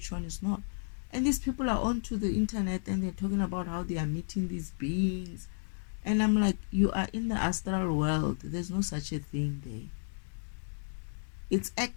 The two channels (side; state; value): right; silent; digital silence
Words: one is not. And these people are onto the internet and they're talking about how they are meeting these beings. And I'm like, you are in the astral world. There's no such a thing there. It's